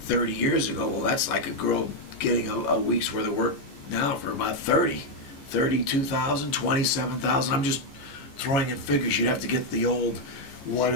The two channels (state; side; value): late; right; 15 ms